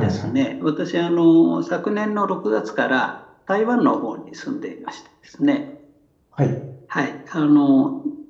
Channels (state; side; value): identical; both; correlation 1.00